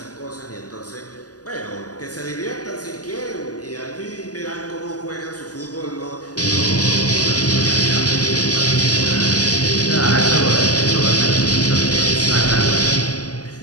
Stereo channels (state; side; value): late; right; 0.68 ms